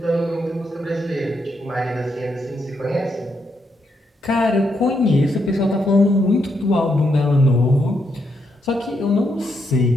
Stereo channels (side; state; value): both; normal; correlation 0.79